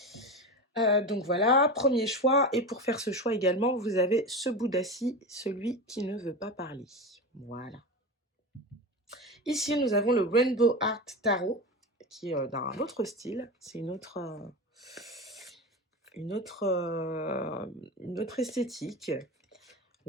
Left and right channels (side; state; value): both; normal; correlation 0.23